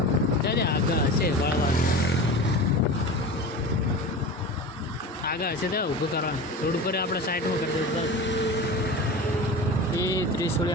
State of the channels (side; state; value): both; normal; correlation 0.31